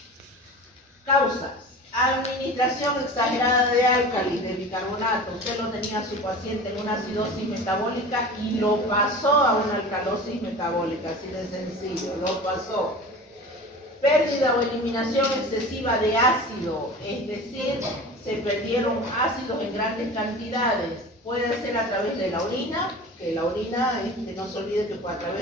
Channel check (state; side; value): normal; both; correlation 0.36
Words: Causas. Administración exagerada de álcalis, de bicarbonato. Usted lo tenía a su paciente en una acidosis metabólica y lo pasó a una alcalosis metabólica, así de sencillo, lo pasó. Pérdida o eliminación excesiva de ácido, es decir, se perdieron ácidos en grandes cantidades. Puede ser a través de la orina, que la orina, no se olvide que a